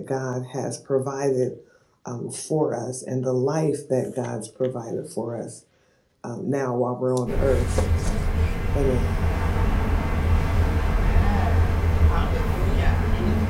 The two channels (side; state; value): both; identical; correlation 1.00